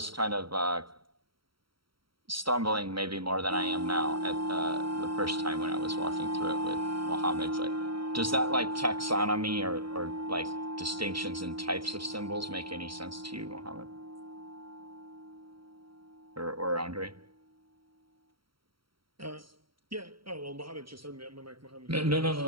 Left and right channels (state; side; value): late; left; 0.74 ms